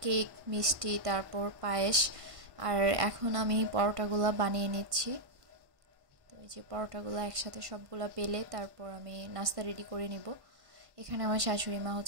কেক, মিষ্টি, তারপর পায়েস। আর এখন আমি পরোটাগুলো বানিয়ে নিচ্ছি। তো এই যে পরোটাগুলো একসাথে সবগুলা বেলে তারপর আমি নাস্তা রেডি করে নিব। এখানে আমার শাশুড়ি মা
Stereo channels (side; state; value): left; late; 1.1 ms